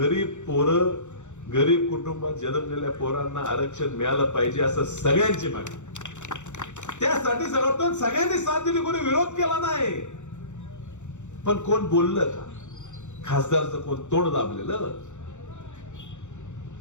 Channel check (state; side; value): late; right; 0.84 ms